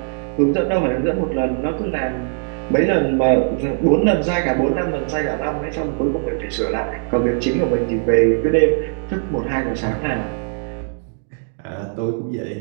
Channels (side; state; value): left; silent; 66 dB below the other